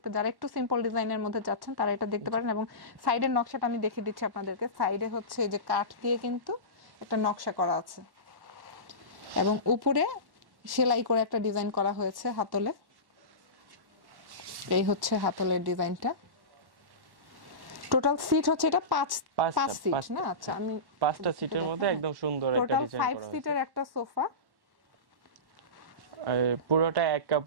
যারা একটু সিম্পল ডিজাইনের মধ্যে যাচ্ছেন তারা এটা দেখতে পারেন। এবং সাইডের নকশাটা আমি দেখিয়ে দিচ্ছি আপনাদেরকে। সাইডে হচ্ছে এই যে কাঠ দিয়ে কিন্তু একটা নকশা করা আছে, এবং উপরে সেলাই করে একটা ডিজাইন করা হয়েছে হাতলে। এই হচ্ছে হাতলের ডিজাইনটা। টোটাল সিট হচ্ছে এটা 5 সিট না? আচ্ছা, আমি 5টা সিটের মধ্যে একদম সুন্দর একটা ডিজাইন করা হয়েছে। 5 সিটের একটা সোফা। পুরোটা এক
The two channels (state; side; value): late; left; 1.1 ms